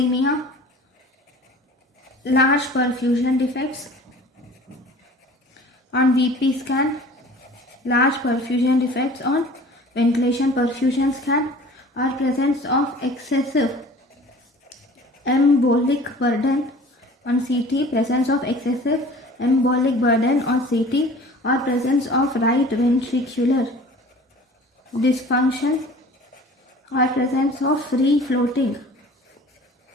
large perfusion defects on VP scan, large perfusion defects on ventilation perfusion scan, or presence of excessive embolic burden on CT, presence of excessive embolic burden on CT, or presence of right ventricular dysfunction, or presence of free floating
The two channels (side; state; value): both; normal; correlation 0.45